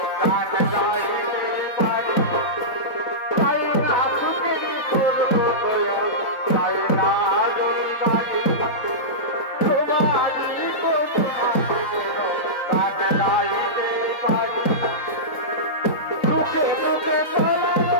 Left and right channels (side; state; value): right; late; 3.7 ms